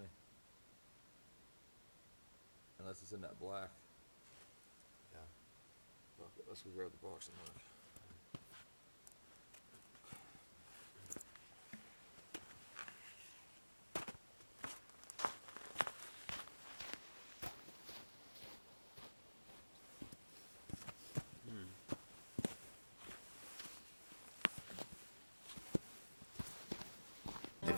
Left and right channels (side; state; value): both; inverted; correlation -1.00